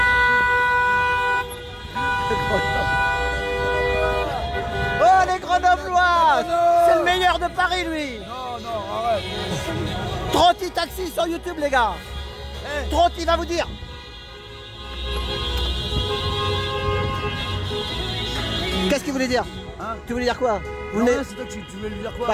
C'est le meilleur de Paris, lui. Non, arrête. Trotti Taxi sur YouTube, les gars. Hey. Trotti va vous dire. Qu'est-ce qu'il voulait dire, hein? Tu voulais dire quoi? C'est toi, tu voulais lui dire quoi?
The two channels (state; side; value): identical; both; correlation 1.00